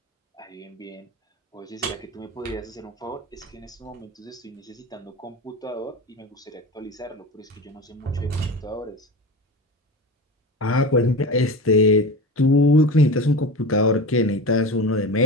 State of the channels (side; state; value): both; normal; correlation 0.29